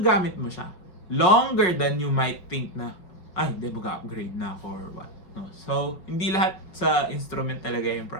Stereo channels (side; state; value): right; late; 5.4 ms